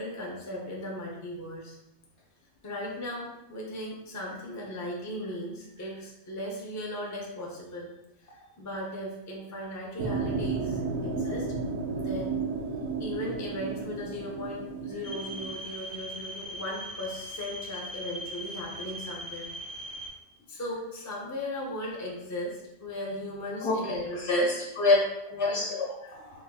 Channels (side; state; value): both; normal; correlation 0.07